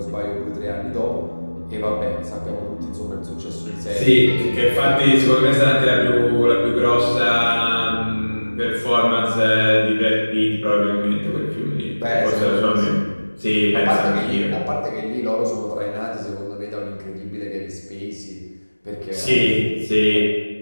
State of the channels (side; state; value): both; inverted; correlation -1.00